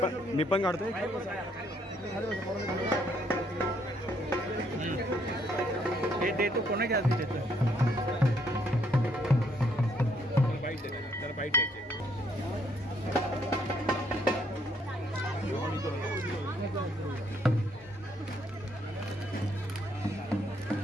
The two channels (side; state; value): both; normal; correlation 0.70